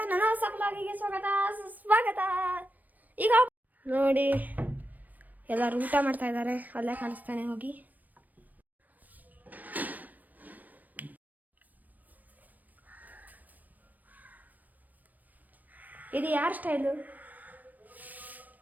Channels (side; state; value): left; late; 0.084 ms